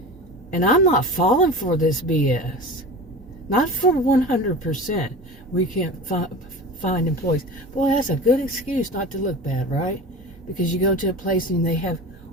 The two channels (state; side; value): normal; both; correlation 0.33